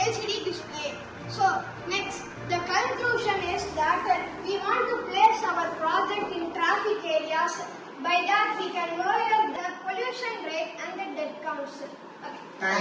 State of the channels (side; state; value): both; identical; correlation 1.00